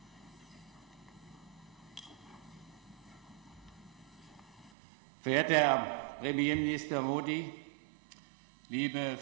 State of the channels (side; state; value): left; drops out; at 4.7 s